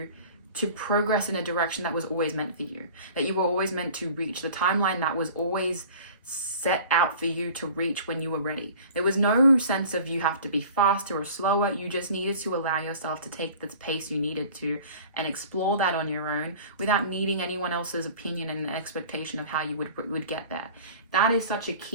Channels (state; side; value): inverted; both; correlation -0.43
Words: progress in a direction that was always meant for you, that you were always meant to reach, the timeline that was always set out for you to reach when you were ready. There was no sense of you have to be faster or slower. You just needed to allow yourself to take the pace you needed to and explore that on your own without needing anyone else's opinion and expectation of how you would get there. That is such a